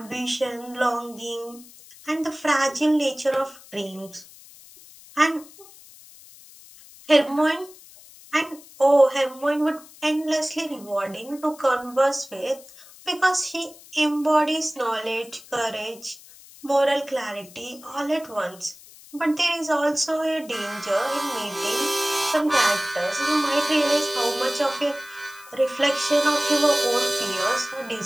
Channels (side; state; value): left; noise; hiss, 21 dB below the sound